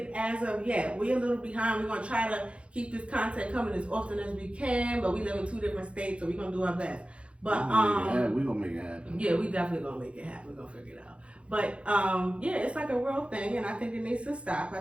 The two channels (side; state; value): left; late; 0.060 ms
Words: as of yet. We're a little behind. We're gonna try to keep this content coming as often as we can, but we live in 2 different states, so we're gonna do our best. But we're gonna make it happen. Yeah, we definitely gonna make it happen. We're gonna figure it out. But yeah, it's like a real thing, and I think it needs to stop.